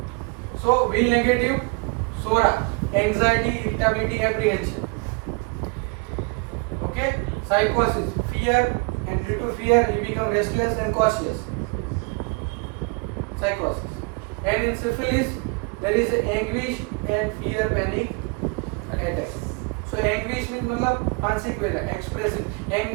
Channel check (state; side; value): quieter; left; 31.1 dB